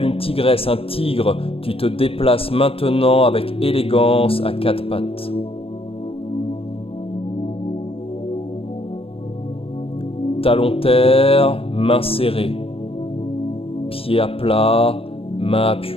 une tigresse, un tigre, tu te déplaces maintenant avec élégance à quatre pattes. Talon terre, main serrée. Pied à plat, main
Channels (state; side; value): late; right; 0.28 ms